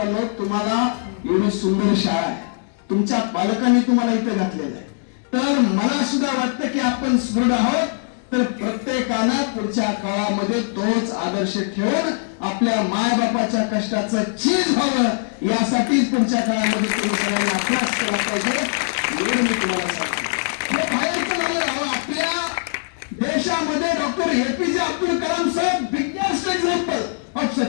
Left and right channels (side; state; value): right; silent; digital silence